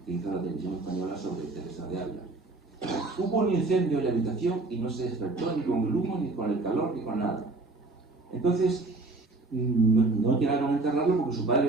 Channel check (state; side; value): quieter; left; 3.3 dB